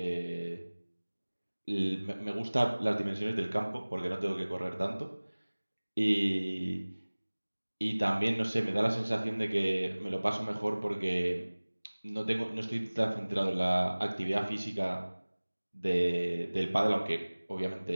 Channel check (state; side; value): inverted; both; correlation -1.00